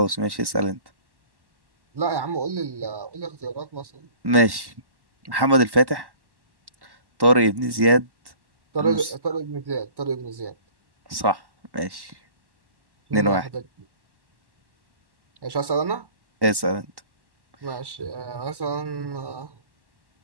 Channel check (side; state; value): left; late; 1.1 ms